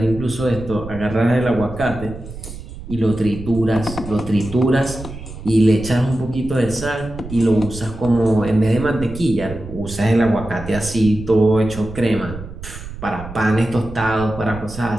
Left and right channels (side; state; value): right; noise; rumble, 12 dB below the sound